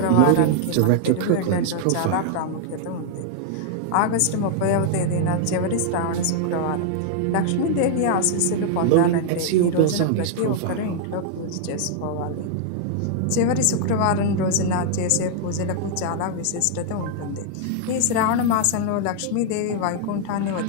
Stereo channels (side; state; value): both; different; correlation 0.00